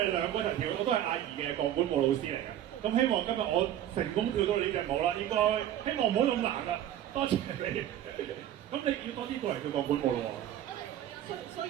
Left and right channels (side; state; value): left; quieter; 11.5 dB